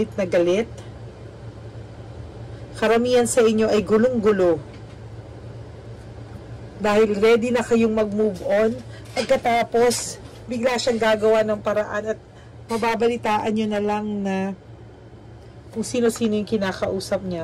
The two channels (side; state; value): both; identical; correlation 1.00